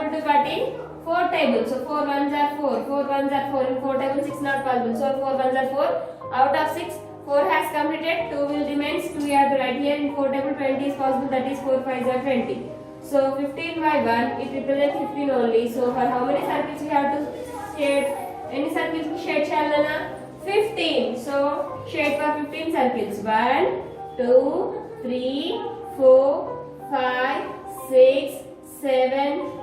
to cut in 4 tables. So 4 1s are 4. 4 1s are 4. In 4 tables 6 not possible. So 4 1s are 4. Out of 6, 4 has completed. 2 will remain. 2 we have to write here. In 4 table 20 is possible. That is 4 5s are 20. So 15 by 1 it represents 15 only. So for how many circles we have to shade? Any circles we shade Shalana? 15. So shade for 15 circles. 1, 2, 3, 4, 5, 6, 7,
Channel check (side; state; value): both; identical; correlation 1.00